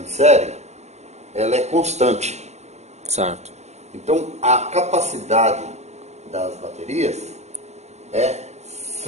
série, ela é constante. Certo. Então, a capacidade das baterias é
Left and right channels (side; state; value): left; late; 0.32 ms